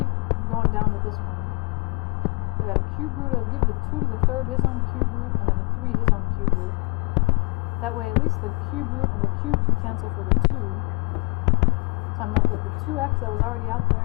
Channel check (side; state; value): right; quieter; 29.4 dB